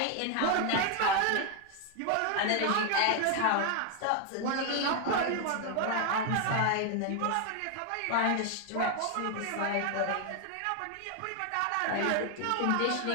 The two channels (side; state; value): both; different; correlation 0.01